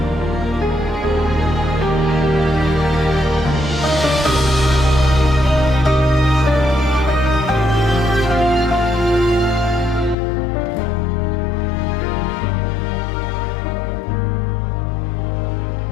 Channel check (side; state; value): right; drops out; at 10.2 s